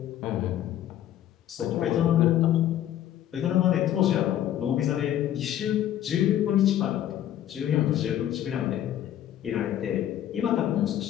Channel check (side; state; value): right; quieter; 11.7 dB